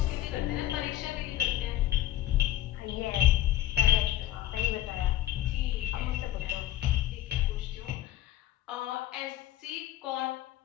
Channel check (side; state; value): right; quieter; 13.8 dB